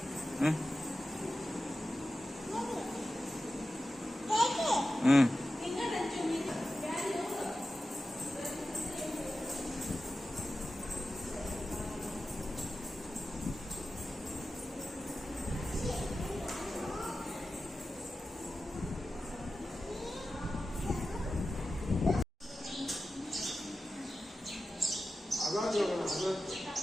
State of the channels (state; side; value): normal; both; correlation 0.93